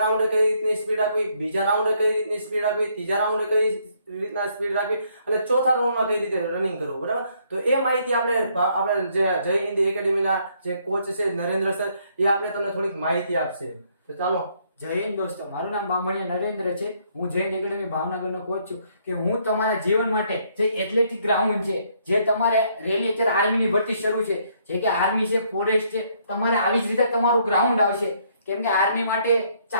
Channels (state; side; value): inverted; both; correlation -0.69